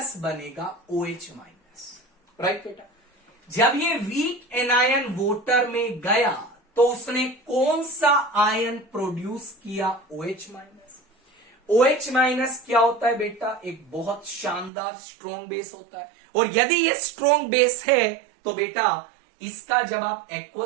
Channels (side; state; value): left; drops out; at 14.7 s